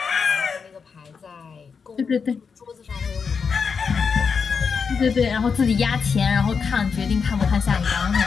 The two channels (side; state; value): right; quieter; 5.8 dB